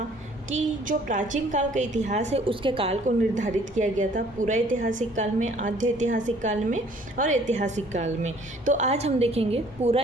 कि जो प्राचीन काल का इतिहास है उसके काल को निर्धारित किया गया था पूरा ऐतिहासिक काल में, आद्य ऐतिहासिक काल में और ऐतिहासिक काल में। तो आज हम देखेंगे पूरा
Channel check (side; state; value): both; normal; correlation 0.57